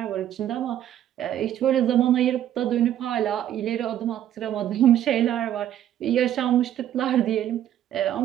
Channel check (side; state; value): left; quieter; 11.4 dB